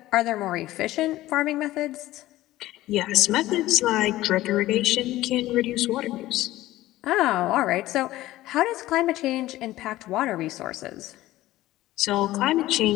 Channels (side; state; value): right; quieter; 16.1 dB